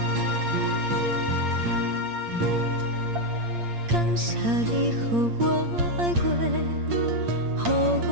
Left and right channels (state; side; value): late; left; 8.6 ms